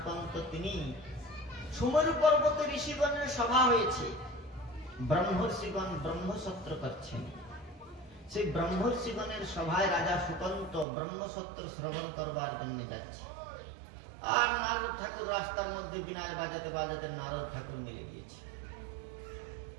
তিনি সুমেরু পর্বতে ঋষিগণের সভা হয়েছে, ব্রহ্মর্ষিগণ ব্রহ্মসত্র করছেন। সেই ব্রহ্মর্ষিগণের সভায় রাজা সুকান্ত ব্রহ্মসত্র শ্রবণ করবার জন্য যাচ্ছে, আর নারদ ঠাকুর রাস্তার মধ্যে বিনায় বাজাতে বাজাতে নারদ ঠাকুর মিলে গিয়েছে।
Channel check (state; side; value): drops out; left; at 10.9 s